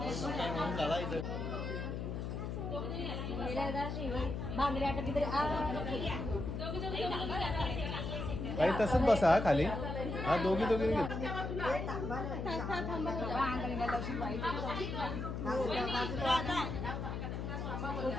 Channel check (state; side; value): noise; left; hum, 4 dB below the sound